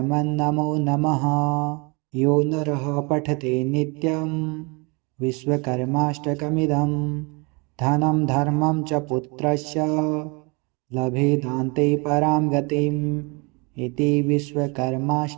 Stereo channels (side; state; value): left; quieter; 30.0 dB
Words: नमो नमः। यो नरः पठते नित्यं विश्वकर्माष्टकमिदं धनं धर्मं च पुत्रस्य लभेदान्ते परां गतिम् इति